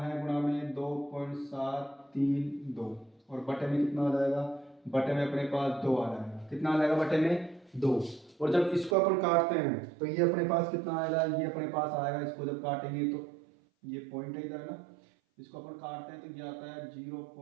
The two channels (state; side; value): drops out; left; at 9.0 s